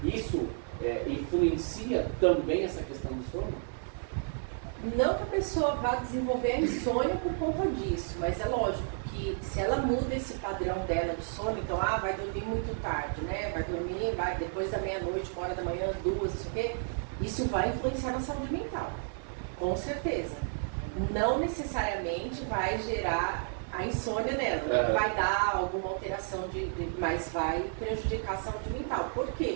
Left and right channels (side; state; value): left; silent; digital silence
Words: Isso influencia também essa questão do sono? Não que a pessoa vá desenvolver a insônia por conta disso, mas é lógico que se ela muda esse padrão dela de sono, então, vai dormir muito tarde, né? Vai depois da meia-noite, 1 hora da manhã, 2, isso aqui, isso vai influenciar na saúde mental, com certeza. Não necessariamente vai gerar a insônia nela, não vai dar alguma alteração, mas vai prejudicar a saúde mental. Por